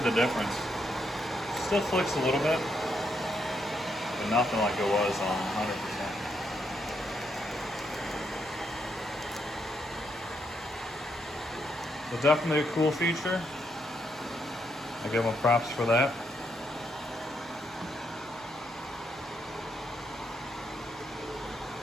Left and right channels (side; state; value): both; normal; correlation 0.78